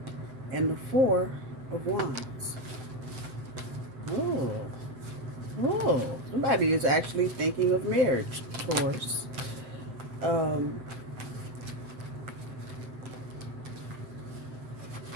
and the Four of Wands. Oh, somebody is actually thinking of marriage, Taurus.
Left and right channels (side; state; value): left; late; 7.8 ms